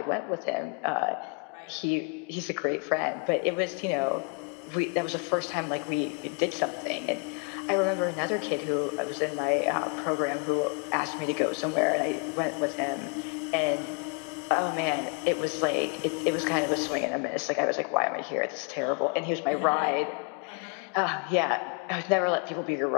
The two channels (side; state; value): right; quieter; 34.5 dB